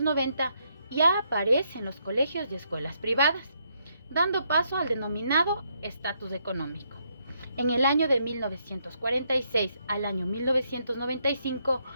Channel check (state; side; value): inverted; both; correlation -0.75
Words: ya aparece en los colegios y escuelas privadas, dando paso al denominado estatus económico. En el año de 1946 al año 1995,